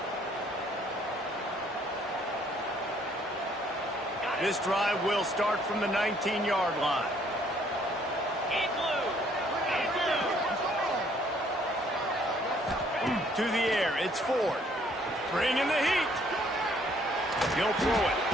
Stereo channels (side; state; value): both; normal; correlation 0.63